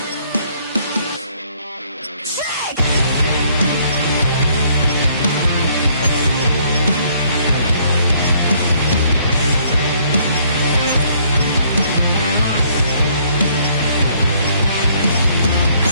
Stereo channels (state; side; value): inverted; both; correlation -0.64